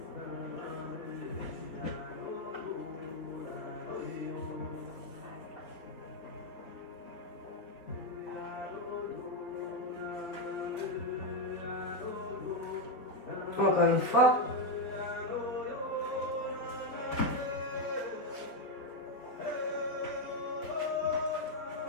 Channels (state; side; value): late; right; 4.1 ms